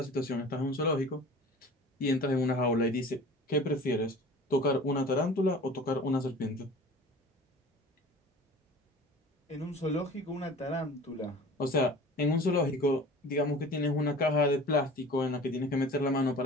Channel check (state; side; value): normal; both; correlation 0.42